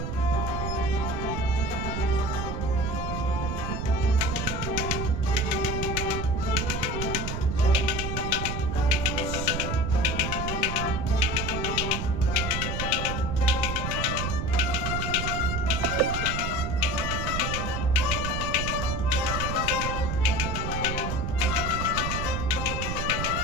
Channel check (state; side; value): noise; right; rumble, 2 dB below the sound